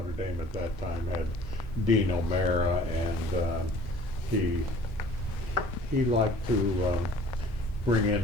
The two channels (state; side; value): normal; both; correlation 0.50